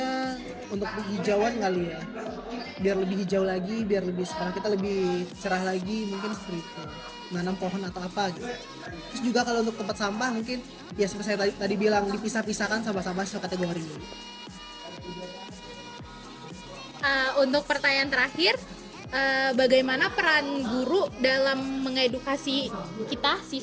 untuk penghijauan kali ya. Biar lebih hijau lagi, biar lebih sekolah kita lebih cerah lagi, mungkin seperti itu. Nanam pohon atau apa gitu. Terus juga kalau untuk tempat sampah mungkin ya seperti saya tadi bilang dipisah-pisahkan sampah-sampah sesuai kategori. Untuk pertanyaan terakhir, bagaimana peran guru dalam mengedukasi kita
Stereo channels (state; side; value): identical; both; correlation 1.00